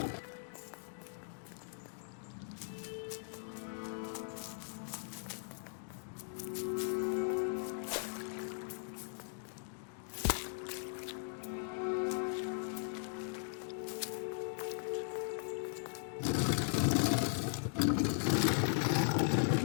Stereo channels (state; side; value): silent; right; digital silence